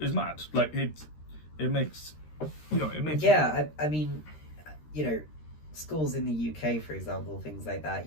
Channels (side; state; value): right; late; 13 ms